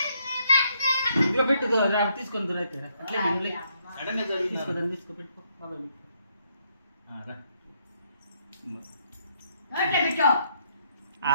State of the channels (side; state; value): both; inverted; correlation -0.73